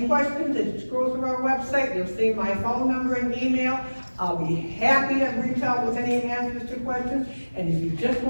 questions, if you scroll through our website, you'll see my phone number and email. I'll be happy to reach out with any answers to questions. And if you just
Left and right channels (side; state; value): both; inverted; correlation -1.00